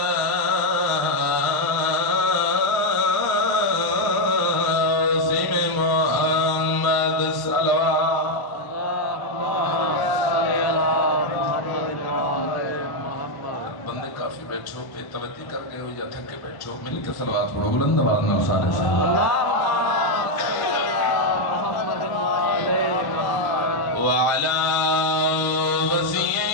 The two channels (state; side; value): late; right; 1.1 ms